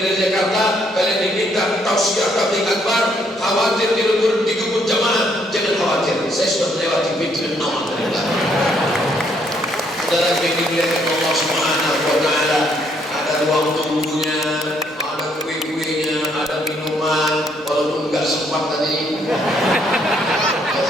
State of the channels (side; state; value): both; normal; correlation 0.70